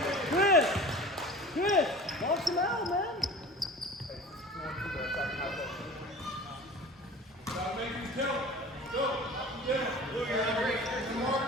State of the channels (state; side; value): normal; both; correlation 0.39